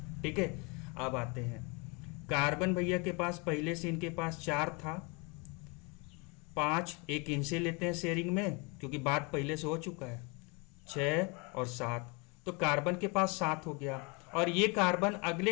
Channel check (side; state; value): right; quieter; 30.3 dB